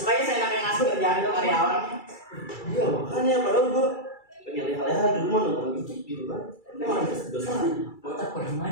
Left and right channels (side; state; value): right; late; 2.3 ms